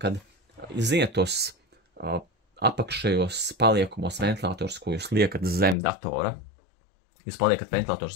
ziniet tos apakšējos paliekumos ventilators, ko jūs liekat zem datora. Jūs paliekat ventilators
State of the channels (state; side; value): drops out; right; at 5.8 s